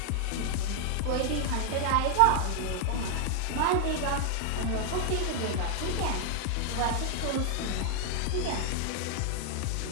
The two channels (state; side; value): different; both; correlation 0.00